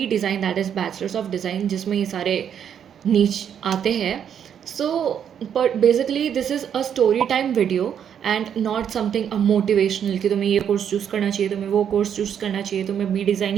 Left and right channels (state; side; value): quieter; left; 8.6 dB